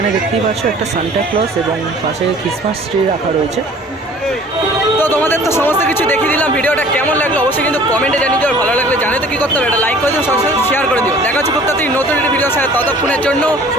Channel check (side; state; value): both; normal; correlation 0.50